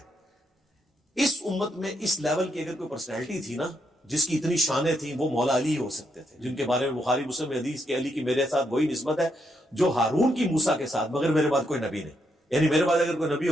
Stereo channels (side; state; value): both; normal; correlation 0.79